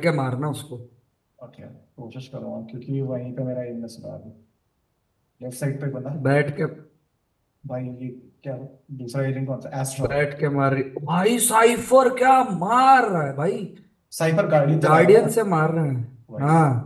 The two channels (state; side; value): identical; both; correlation 1.00